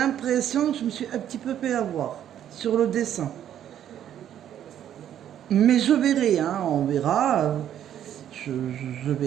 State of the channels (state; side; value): quieter; left; 10.5 dB